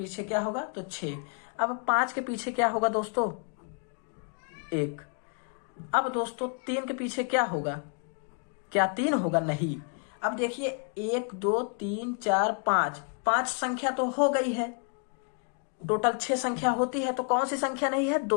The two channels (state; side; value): quieter; right; 39.3 dB